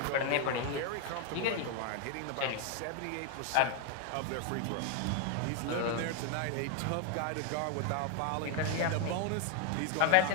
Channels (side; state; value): both; different; correlation 0.01